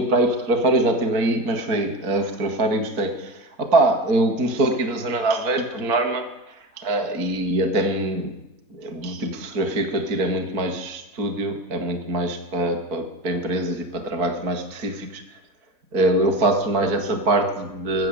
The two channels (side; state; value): left; late; 4.5 ms